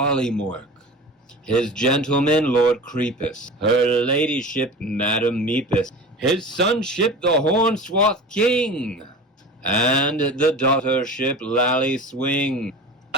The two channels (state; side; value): normal; both; correlation 0.34